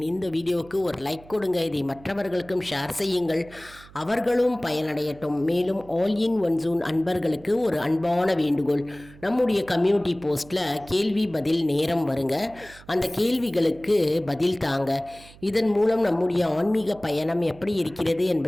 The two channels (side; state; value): right; noise; hum, 22 dB below the sound